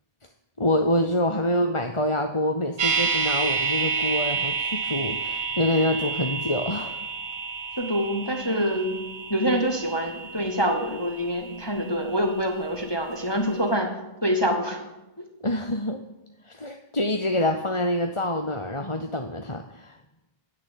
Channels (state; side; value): late; right; 1.2 ms